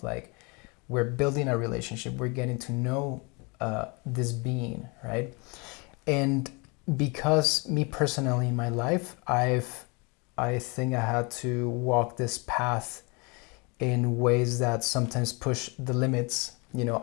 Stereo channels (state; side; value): quieter; right; 30.1 dB